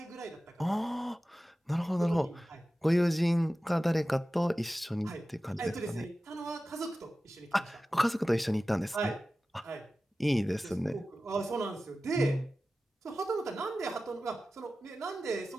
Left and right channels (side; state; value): both; normal; correlation 0.95